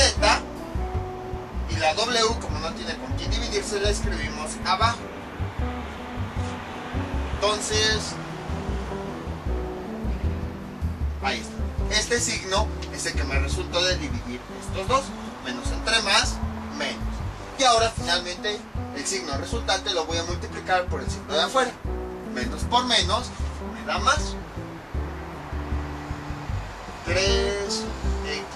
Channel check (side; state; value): both; identical; correlation 1.00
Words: Y la W, como no tiene con quién dividirse, la escribimos abajo. Entonces, ahí está. Este signo es el que me resultó de dividir estos dos. Menos entre más, menos. Y ahora finalmente el signo resultante lo voy a multiplicar por el signo de afuera. Menos por menos me da más. 3x